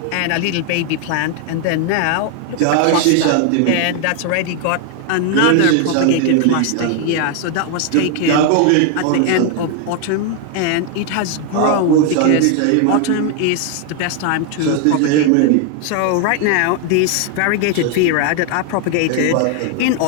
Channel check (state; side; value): different; both; correlation 0.01